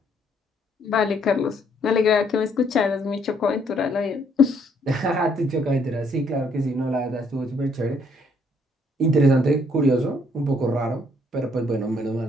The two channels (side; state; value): both; normal; correlation 0.68